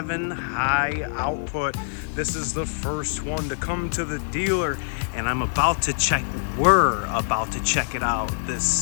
high output. This is the first one to come to the dealer, and we're about to check it out.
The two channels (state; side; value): silent; right; 57 dB below the other